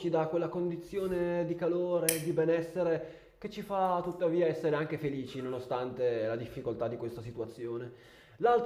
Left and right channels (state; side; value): identical; both; correlation 1.00